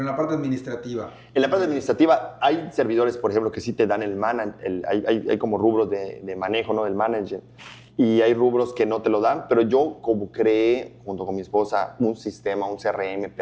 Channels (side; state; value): both; identical; correlation 1.00